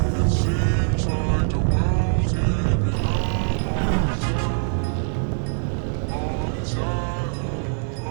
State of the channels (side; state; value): left; silent; 60 dB below the other